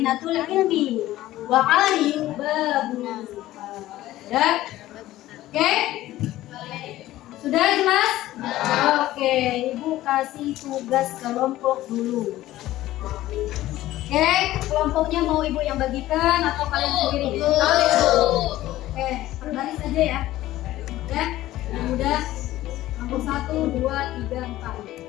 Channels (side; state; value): right; quieter; 15.4 dB